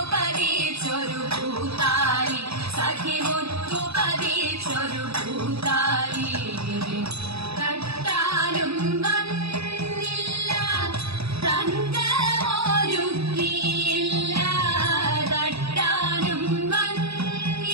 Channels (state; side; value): late; left; 0.78 ms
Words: പതിച്ചൊരു പൂത്താലി, സഖി മുത്തു പതിച്ചൊരു പൂത്താലി. തട്ടാനും വന്നില്ല, തങ്കമൊരുക്കിയില്ല. തട്ടാനും